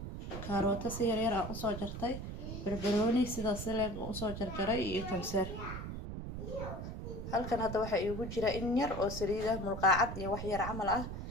كاروتا سيريرا أسو جرتي بربروني سيدا سلق أسو جرجري يكمسر halkan hadda waxa iigu jira in yar oo saliid ah mulqaacad iyo wax yar camal ah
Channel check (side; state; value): right; noise; rumble, 7 dB below the sound